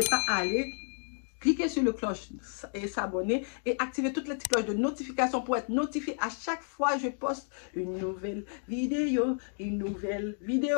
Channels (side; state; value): right; silent; 56 dB below the other